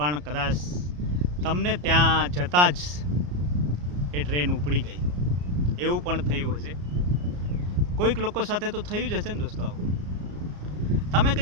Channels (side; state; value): left; late; 34 ms